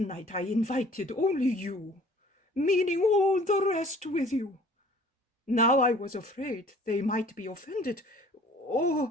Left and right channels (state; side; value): normal; both; correlation 0.51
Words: I invited only you, meaning all the rest with you. Now I was afraid they might be offended, or